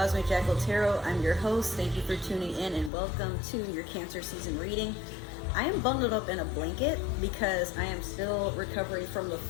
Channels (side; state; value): right; drops out; at 2.9 s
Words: Jackal Tarot. I'm your host. Thank you for tuning in and welcome to your Cancer season reading. I am bundled up in a blanket because I am still recovering from the